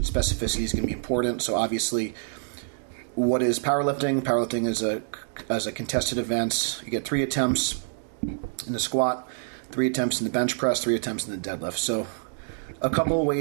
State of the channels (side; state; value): left; silent; 60 dB below the other